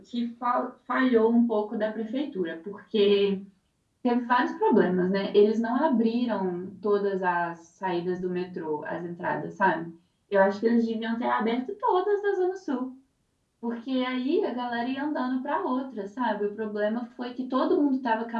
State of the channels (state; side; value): identical; both; correlation 1.00